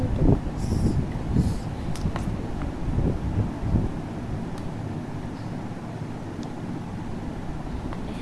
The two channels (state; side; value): identical; both; correlation 1.00